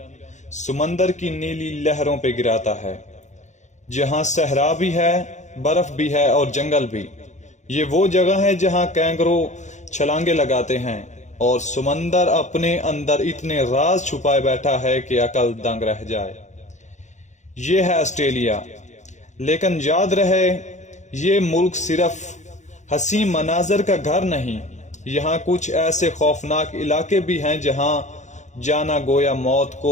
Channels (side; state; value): right; late; 0.34 ms